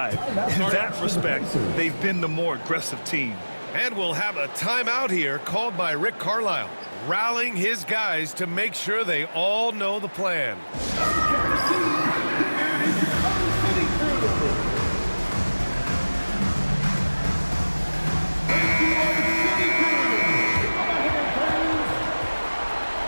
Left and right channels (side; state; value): both; inverted; correlation -1.00